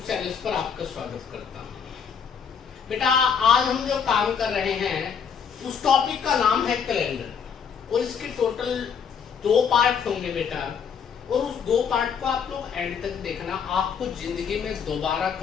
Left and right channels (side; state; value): right; quieter; 6.9 dB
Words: channel पर आपका स्वागत करता हूँ। बेटा आज हम जो काम कर रहे हैं उस टॉपिक का नाम है कैलेंडर और इसके टोटल 2 पार्ट होंगे बेटा, और उस 2 पार्ट को आप लोग एंड तक देखना। आपको जिंदगी में दोबारा